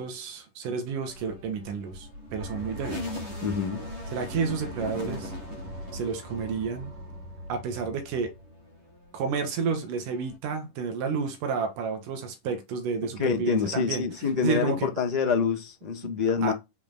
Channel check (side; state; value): left; late; 10 ms